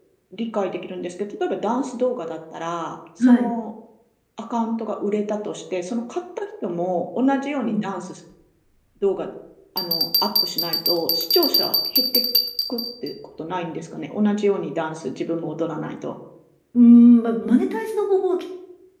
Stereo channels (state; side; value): identical; both; correlation 1.00